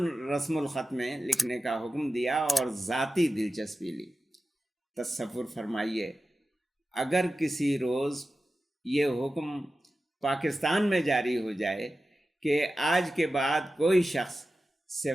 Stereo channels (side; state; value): both; normal; correlation 0.94